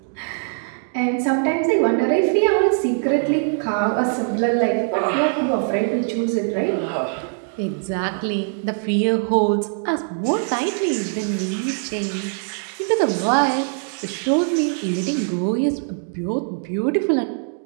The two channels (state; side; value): silent; left; 64 dB below the other